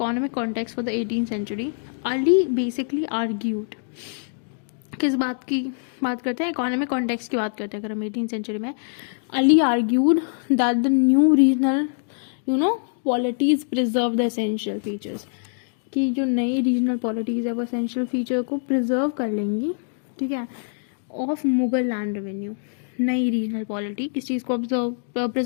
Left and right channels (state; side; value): silent; right; digital silence